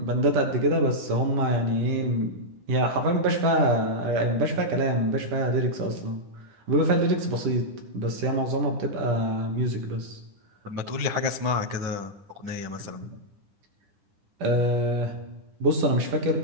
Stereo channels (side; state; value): left; late; 9.9 ms